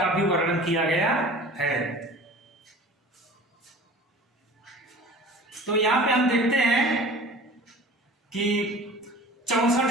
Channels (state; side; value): normal; both; correlation 0.42